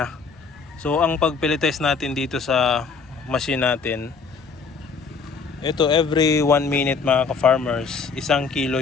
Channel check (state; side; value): quieter; right; 5.1 dB